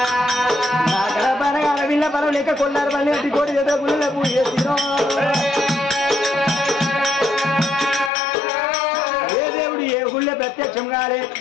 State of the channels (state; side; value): drops out; right; at 8.1 s